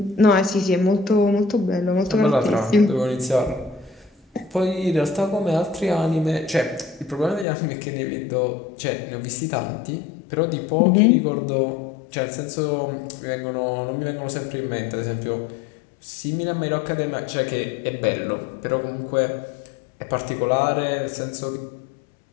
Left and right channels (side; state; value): right; drops out; at 7.5 s